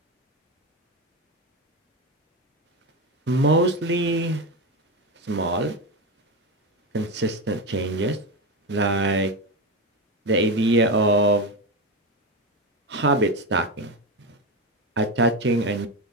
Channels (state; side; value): normal; both; correlation 0.16